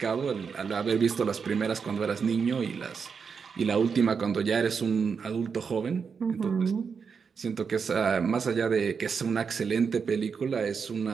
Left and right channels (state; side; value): quieter; left; 5.9 dB